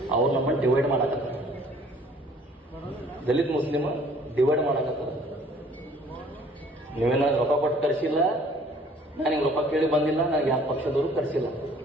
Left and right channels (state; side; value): normal; both; correlation 0.55